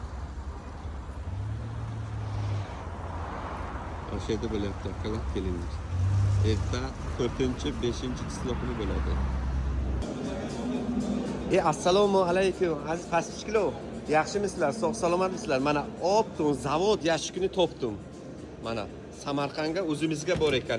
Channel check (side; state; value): both; identical; correlation 1.00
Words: O'sha yerda bo'lyapti, aqalab kelinglar. Erta 4-5 kuni bo'ladi. Assalomu alaykum aziz pastishkilo. Yaxshimisizlar? Sog' salomatmisizlar? Mana optum zavod yashikini topdim. Mana Samarqandga o'zimizga bor